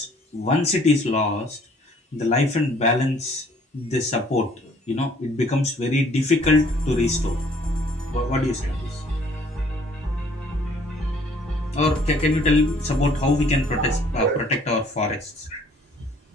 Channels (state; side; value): normal; both; correlation 0.59